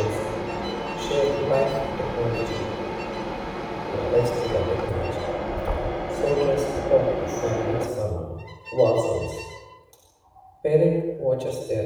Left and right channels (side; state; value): both; identical; correlation 1.00